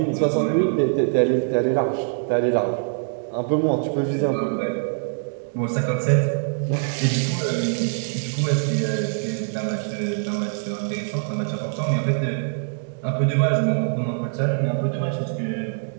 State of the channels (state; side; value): silent; left; digital silence